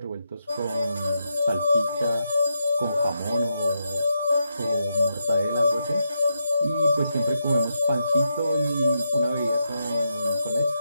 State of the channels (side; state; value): both; inverted; correlation -0.83